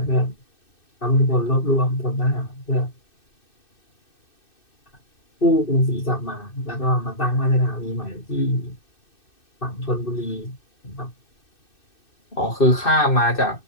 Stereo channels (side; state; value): right; late; 2.6 ms